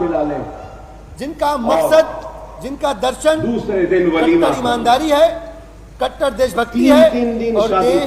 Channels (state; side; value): identical; both; correlation 1.00